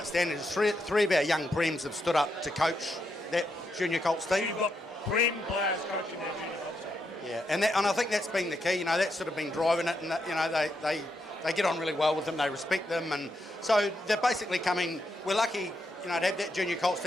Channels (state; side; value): normal; both; correlation 0.81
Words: is three of our young Prems have stood up to coach that junior Colts team. So you've got Prem players coaching that junior Colts team. Yeah, and I think that's been the key. That's sort of been driving it, and they get on really well with them. They respect them, and so they're basically coming. We're lucky, to have that junior Colts